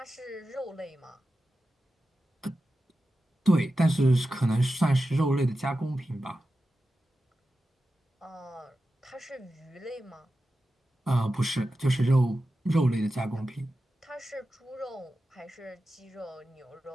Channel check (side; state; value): both; normal; correlation 0.92